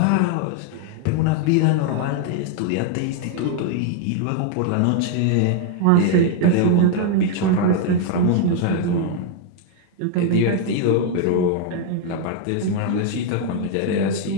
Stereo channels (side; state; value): both; different; correlation 0.00